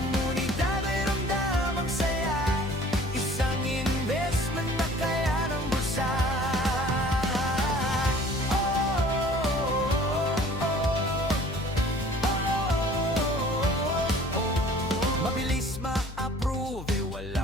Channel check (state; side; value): noise; left; hum, 11 dB below the sound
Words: ay ramdam ang saya, isang investment na kaya ng bulsa. Mabilis ma-approve,